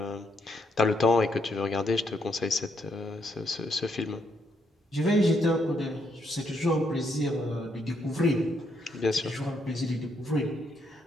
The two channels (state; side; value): normal; both; correlation 0.75